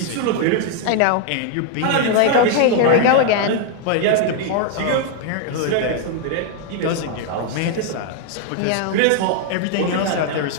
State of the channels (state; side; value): different; both; correlation 0.00